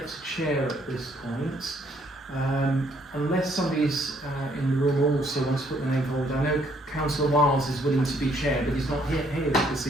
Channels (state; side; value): normal; both; correlation 0.67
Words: a chair at this point. Unless somebody's in the room also wants to put the name forward. I know Councillor Wiles is willing to be chair, but he's not here this